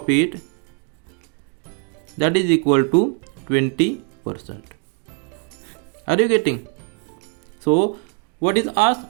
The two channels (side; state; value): left; quieter; 35.9 dB